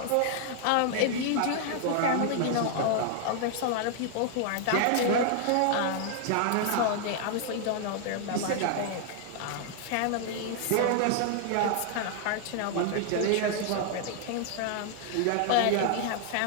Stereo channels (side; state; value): both; different; correlation 0.00